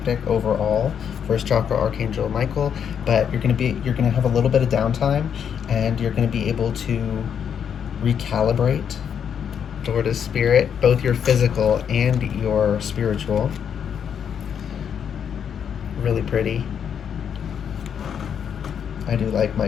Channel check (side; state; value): right; quieter; 8.0 dB